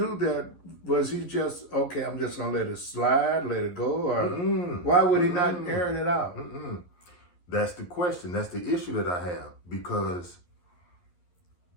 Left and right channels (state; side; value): late; right; 11 ms